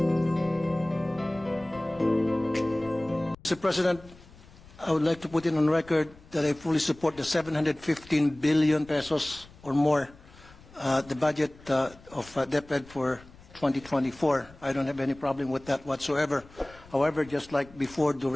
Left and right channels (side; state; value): left; noise; rumble, 23 dB below the sound